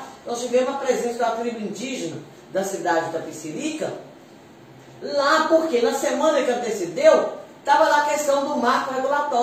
nós tivemos a presença da tribo indígena da cidade da Itapecerica, lá porque na semana que antecedeu, estava lá a questão do marco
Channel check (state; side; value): identical; both; correlation 1.00